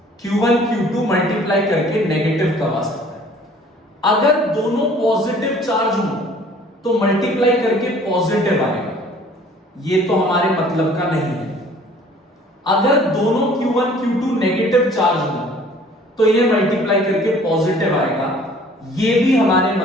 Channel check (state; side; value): normal; both; correlation 0.53